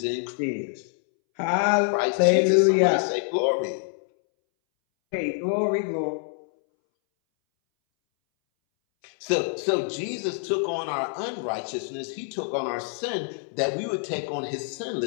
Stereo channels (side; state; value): right; silent; 61 dB below the other